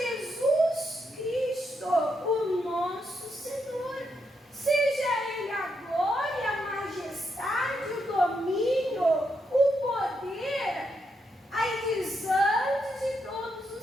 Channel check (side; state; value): both; normal; correlation 0.80